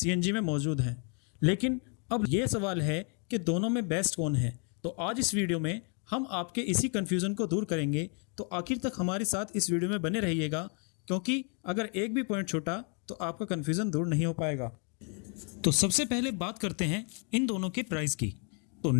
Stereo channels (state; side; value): quieter; right; 38.6 dB